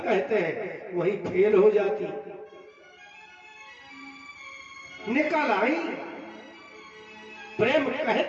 कहते हैं, वही फेल हो जाती। निकल आई। प्रेम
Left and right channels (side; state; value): both; identical; correlation 1.00